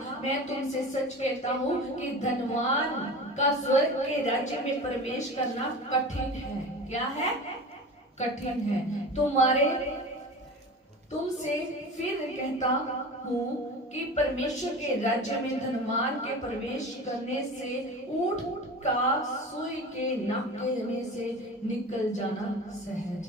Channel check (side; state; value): both; normal; correlation 0.34